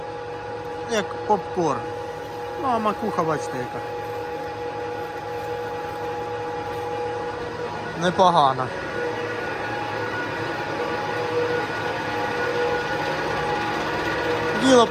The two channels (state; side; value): identical; both; correlation 1.00